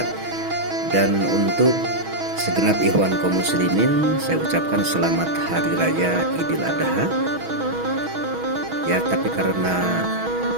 Dan untuk segenap ikhwan kaum muslimin, saya ucapkan selamat hari raya Idul Adha. Ya, tapi karena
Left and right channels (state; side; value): late; left; 6.2 ms